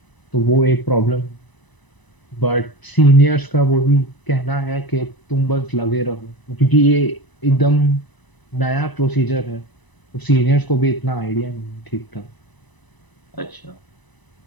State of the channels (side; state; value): right; late; 1.0 ms